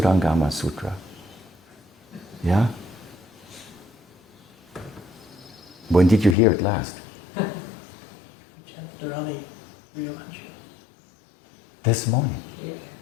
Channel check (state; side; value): drops out; right; at 6.4 s